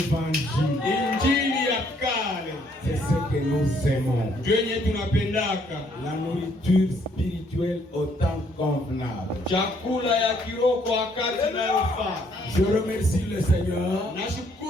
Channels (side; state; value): both; normal; correlation 0.67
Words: Injili ya kale. C'est ce que nous aimons. Yenye tunapendaka. La nourriture spirituelle au temps convenable. Chakula ya kiroho kwa wakati inayofaa. Je remercie le Seigneur.